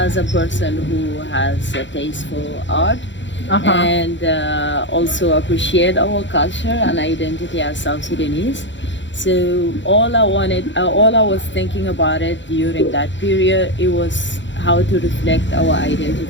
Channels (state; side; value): late; right; 0.54 ms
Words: a person who has a taste for art. And also appreciate our culture and identity as South Sudanese. So all I was thinking about it during that period, it was how to reflect our